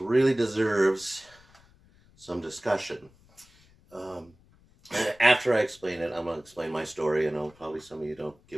deserves some discussion. Um, After I explain it, I'm going to explain my story. I know probably some of you don't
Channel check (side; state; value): left; noise; rumble, 29 dB below the sound